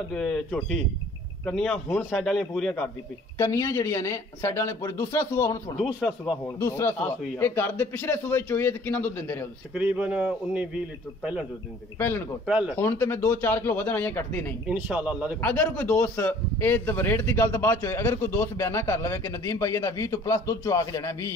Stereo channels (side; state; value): both; normal; correlation 0.53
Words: ਝੋਟੀ ਕੰਨੀਆਂ ਹੁਣ ਸਾਈਡ ਵਾਲੀਆਂ ਪੂਰੀਆਂ ਕਰਦੀ ਪਈ ਕੰਨੀਆਂ ਜਿਹੜੀਆਂ ਨੇ ਸਾਈਡਾਂ ਵਾਲੇ ਪੂਰੇ ਦੂਸਰਾ ਸੂਆ ਹੁਣ ਸੁਣਾ ਦੂਸਰਾ ਸੂਆ ਹੋਣ ਦੂਸਰਾ ਆਹ ਸੂਆ ਸੂਈ ਆ। ਇਹ ਘਰ ਦੇ ਪਿਛਲੇ ਸੂਏ ਚੋਈਏ ਤੇ ਕਿੰਨਾ ਦੁੱਧ ਦਿੰਦੇ ਰਹੇ ਹੋ ਤੁਸੀਂ ਤਕਰੀਬਨ 19-20 ਲੀਟਰ ਪਹਿਲਾਂ ਦੁੱਧ ਦਿੰਦੇ ਸੀ ਪਹਿਲਣ ਕੋਲ ਪਹਿਲਣ। ਹੁਣ ਤੇ ਮੈਂ 2-4 ਕਿਲੋ ਵਧਣ ਆਈਆਂ ਕੱਟਦੀ ਨਹੀਂ ਇਨਸ਼ਾਅੱਲਾ ਅੱਲਾ ਦੇ ਅਗਰ ਕੋਈ ਦੋਸਤ ਇਹ ਰੇਟ ਦੀ ਗੱਲ ਤਾਂ ਬਾਅਦ ਚ ਹੋਏ ਅਗਰ ਕੋਈ ਦੋਸਤ ਬਿਆਨਾ ਕਰ ਲਵੇ ਕਿ ਨਦੀਮ ਭਾਈ ਇਹਦਾ 20 ਤੋਂ ਪਲੱਸ ਦੁੱਧ ਚੁਆ ਕੇ ਜਾਣਾ 20